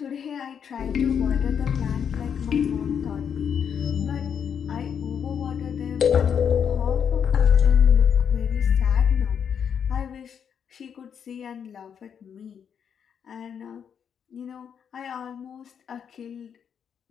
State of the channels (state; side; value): quieter; right; 7.7 dB